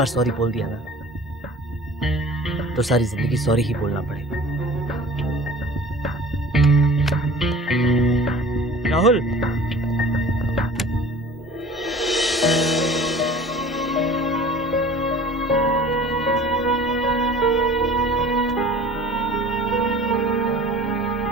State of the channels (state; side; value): normal; both; correlation 0.45